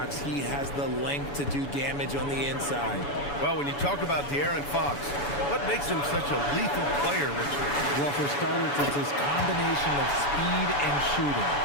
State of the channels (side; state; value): right; late; 7.0 ms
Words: He has the length to do damage on the inside. Well, when you talk about De'Aaron Fox, what makes him such a lethal player, Richard? Well, for starters, it's his combination of speed and shooting.